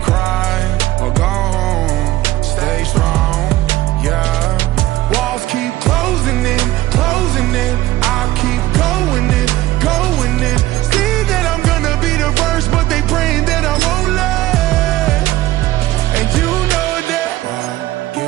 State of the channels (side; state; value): left; quieter; 16.2 dB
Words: or go home. Stay strong, yeah. Walls keep closing in, closing in. I keep going in, going in. See that I'm gonna be the first, but they praying that I won't let. And you know that I